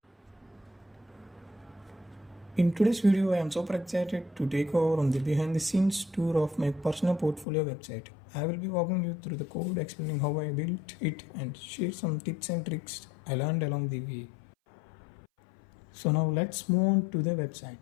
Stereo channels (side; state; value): right; drops out; at 7.5 s